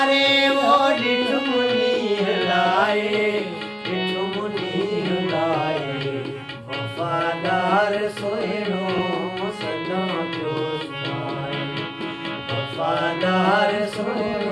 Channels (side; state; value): both; identical; correlation 1.00